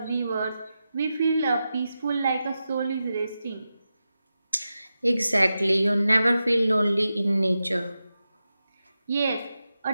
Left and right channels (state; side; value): inverted; both; correlation -0.91